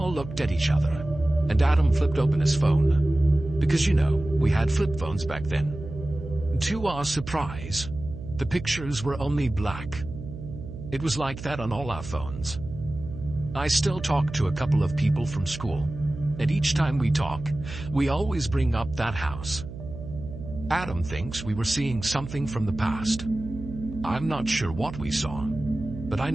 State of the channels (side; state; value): right; noise; hum, 11 dB below the sound